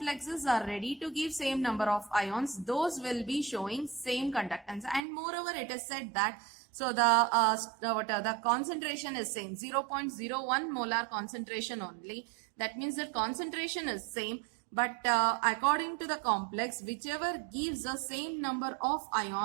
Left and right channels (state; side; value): drops out; left; at 5.0 s